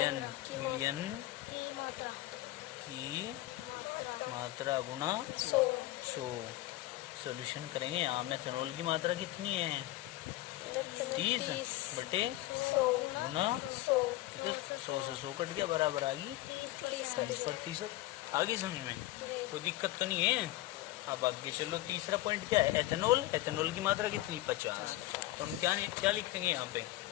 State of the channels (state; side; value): quieter; right; 17.3 dB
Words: की मात्रा गुना 100। सॉल्यूशन करेंगे। यहाँ मेथेनॉल की मात्रा कितनी है? 30 बटे 100 गुना 100। 100 से 100 कट गया, बराबर आ गई 30%। आगे समझ में कोई दिक्कत तो नहीं है? अब आगे चलो, तीसरा पॉइंट क्या है? एथेनॉल की मात्रा कितनी? 50। तो हम क्या लिखेंगे यहाँ पे